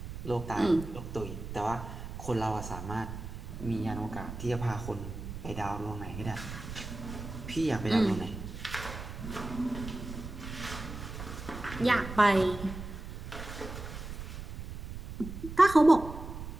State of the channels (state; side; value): noise; right; rumble, 9 dB below the sound